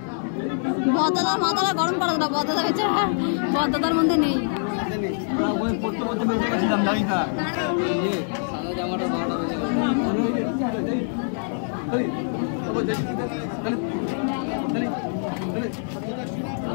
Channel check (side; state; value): right; silent; digital silence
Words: বদাদার মাথাটা গরম করা না, বদাদা বেচারা বদাদার মধ্যে নেই।